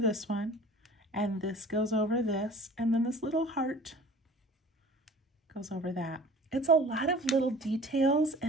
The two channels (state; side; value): normal; both; correlation 0.45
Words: one, and this goes over this, and then this little heart goes over that. It's a lot of little details